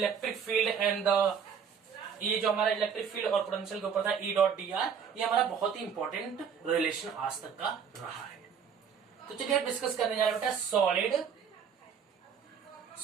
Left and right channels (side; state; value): left; quieter; 7.0 dB